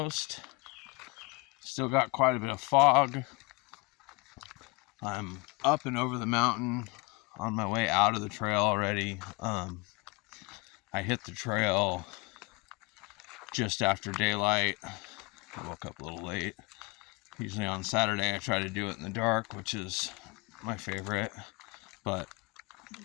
Still got quite a bit of fog. I'm up and over the mountain on my way out of the trail already. I hit the trail just after daylight. I woke up a little late. Usually on Saturday I try to do it in the dark, which is my favorite, but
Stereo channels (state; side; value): quieter; right; 26.3 dB